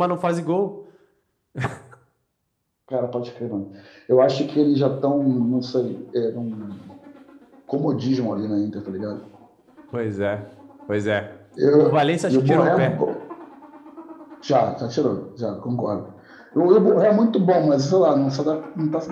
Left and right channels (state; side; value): identical; both; correlation 1.00